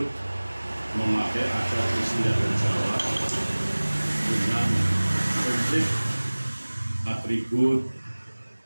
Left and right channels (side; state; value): both; inverted; correlation -1.00